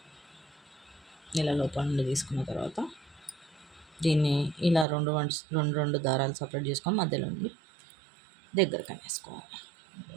ఇలా లోపల నుండి తీసుకున్న తర్వాత దీన్ని ఇలా రెండు దారాలు సపరేట్ చేసుకొని మధ్యలో నుండి దగ్గరకు అనేసుకోవాలి.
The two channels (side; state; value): left; drops out; at 4.9 s